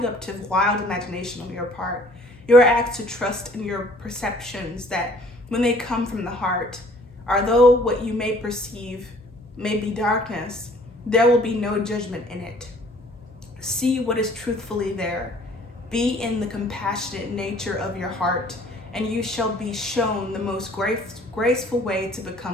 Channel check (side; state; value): left; noise; hum, 25 dB below the sound